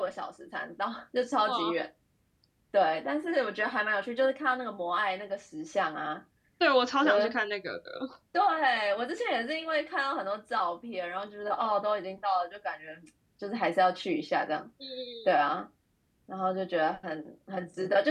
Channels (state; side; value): identical; both; correlation 1.00